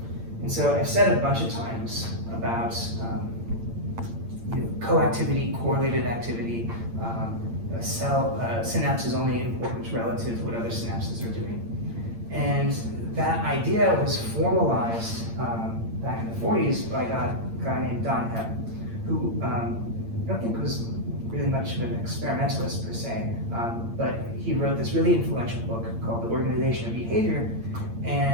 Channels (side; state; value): left; late; 8.8 ms